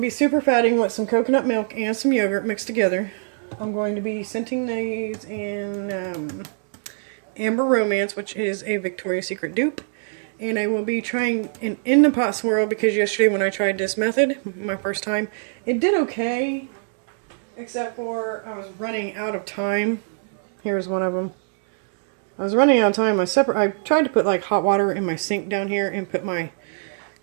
super fatting with some coconut milk and some yogurt mixed together. I'm going to be scenting these in... Amber Romance, which is a Victoria's Secret dupe, and I will be trying an in the pot swirl because yesterday when I tried this method, my first time, it did okay, except for I was running out of time. Here's one of them. I was running out of time. I tried to put like hot water in my sink down here and put my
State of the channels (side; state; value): left; silent; digital silence